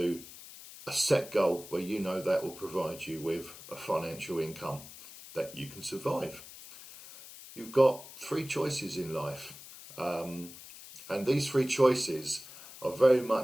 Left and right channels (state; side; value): noise; left; hiss, 16 dB below the sound